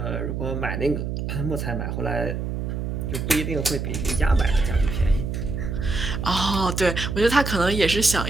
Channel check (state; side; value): noise; right; hum, 3 dB below the sound